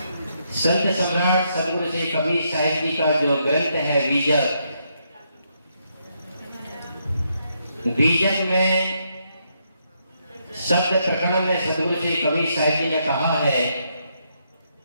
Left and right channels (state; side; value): inverted; both; correlation -0.77